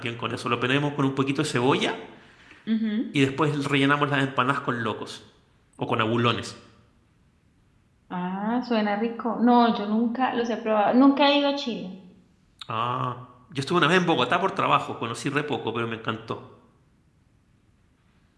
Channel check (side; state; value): both; identical; correlation 1.00